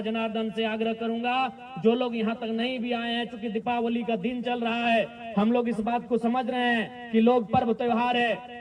जनार्दन से आग्रह करूंगा, जो लोग यहाँ तक नहीं भी आए हैं, चूंकि दीपावली का दिन चल रहा है, हम लोग इस बात को समझ रहे हैं कि लोग पर्व त्योहार है,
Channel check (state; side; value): identical; both; correlation 1.00